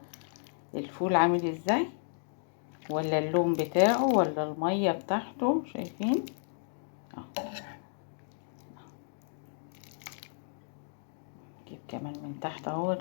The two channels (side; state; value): right; silent; digital silence